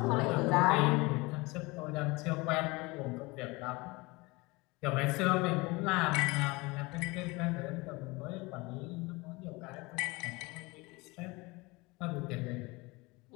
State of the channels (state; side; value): quieter; right; 24.2 dB